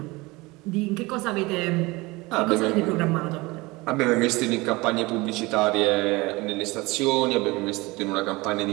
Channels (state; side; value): quieter; left; 22.7 dB